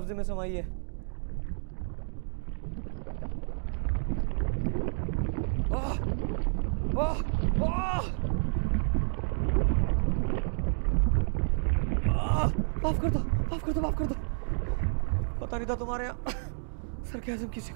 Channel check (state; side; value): silent; left; digital silence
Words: में समाई है। माफ कर दो, माफ कर दो, माफ कर दो। पता नहीं था तुम्हारे यहाँ सरकाज़म किसी